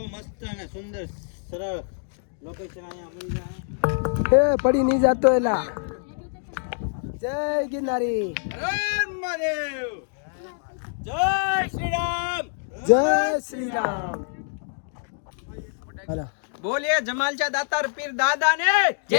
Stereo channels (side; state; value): right; silent; digital silence